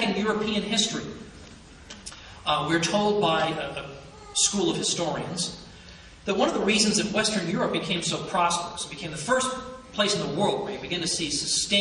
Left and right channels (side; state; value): both; identical; correlation 1.00